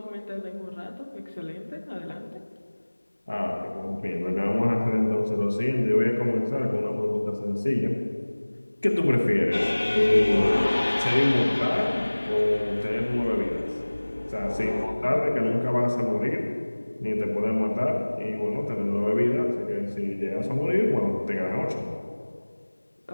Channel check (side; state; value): both; inverted; correlation -1.00